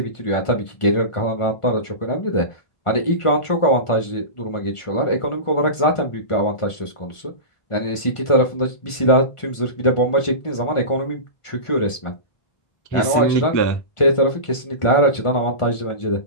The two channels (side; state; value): right; late; 1.4 ms